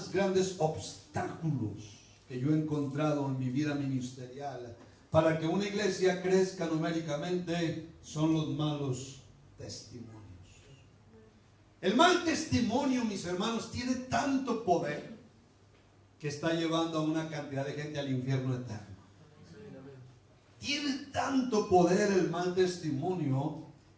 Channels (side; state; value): both; identical; correlation 1.00